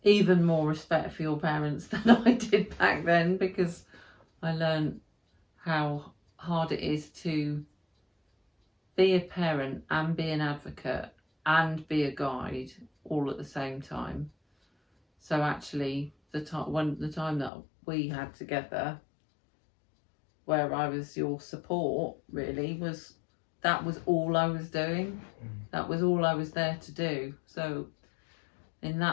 even more respect for your parents than I did back then, because I learned how hard it is to be a parent and be an advocate and be a guide all at the same time. So actually, the time that we had together, where I was your support, really was all I was doing. That was all I was there to do. So in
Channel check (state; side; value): drops out; right; at 17.5 s